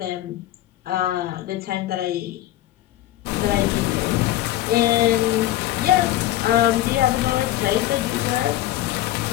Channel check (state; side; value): quieter; right; 14.5 dB